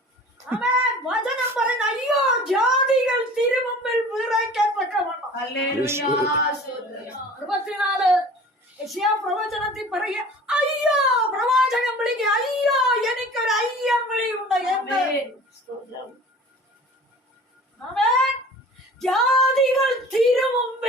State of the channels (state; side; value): normal; both; correlation 0.44